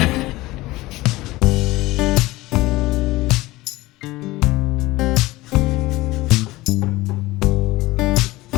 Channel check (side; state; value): right; quieter; 19.3 dB